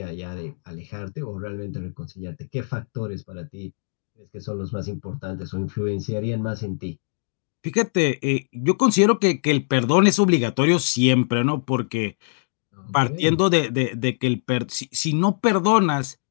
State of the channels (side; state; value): right; silent; digital silence